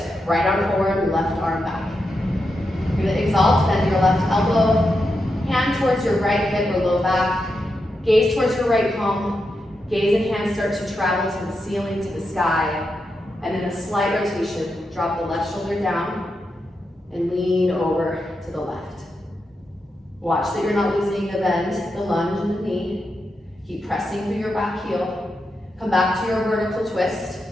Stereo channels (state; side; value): normal; both; correlation 0.86